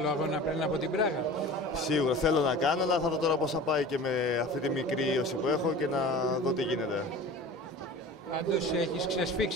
αγώνα πριν από την Πράγα? Σίγουρα θέλω να κάνω, αλλά θα δω τώρα πώς θα πάει και με αυτή τη μικρή ίωση που έχω και να δω τι γίνεται. Πάντως έχεις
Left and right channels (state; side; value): normal; both; correlation 0.38